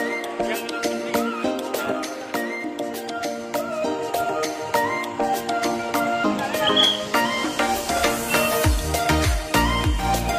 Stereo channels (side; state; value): both; identical; correlation 1.00